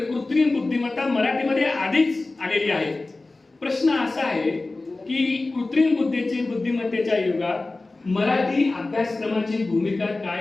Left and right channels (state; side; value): quieter; right; 3.2 dB